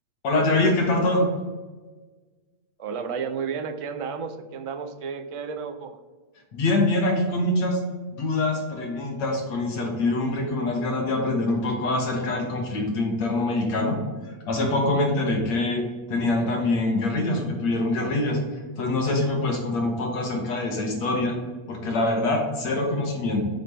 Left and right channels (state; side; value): late; right; 8.6 ms